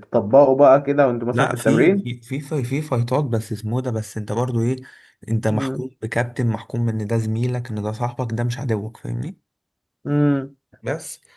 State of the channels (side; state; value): both; identical; correlation 1.00